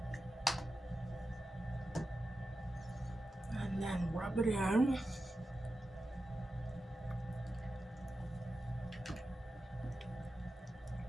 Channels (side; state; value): both; normal; correlation 0.92